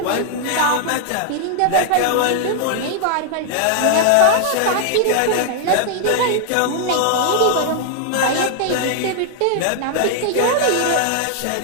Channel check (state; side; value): different; both; correlation 0.00